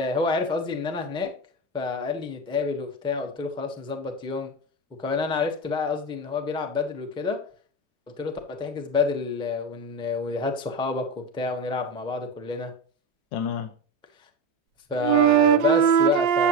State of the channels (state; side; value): normal; both; correlation 0.18